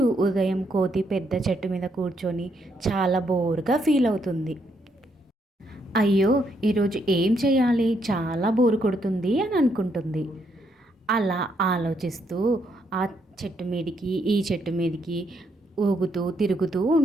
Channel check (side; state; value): both; normal; correlation 0.75